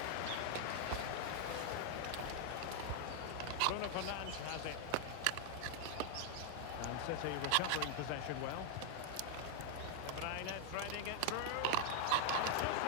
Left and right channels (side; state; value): both; different; correlation 0.00